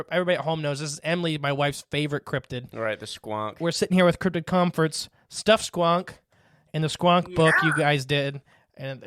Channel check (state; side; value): identical; both; correlation 1.00